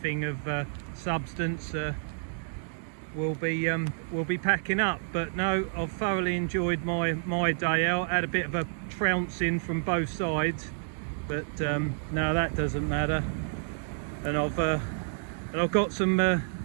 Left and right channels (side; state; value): left; silent; digital silence